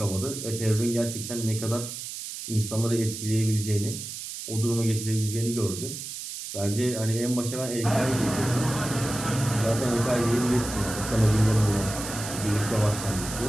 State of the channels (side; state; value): right; noise; hiss, 8 dB below the sound